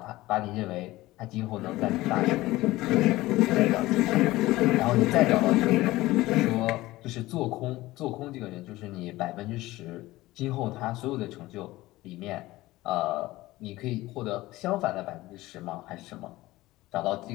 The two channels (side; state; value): right; quieter; 18.1 dB